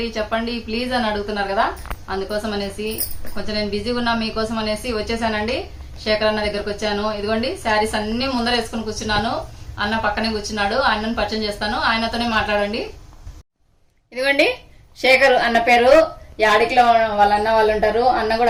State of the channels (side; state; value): both; identical; correlation 1.00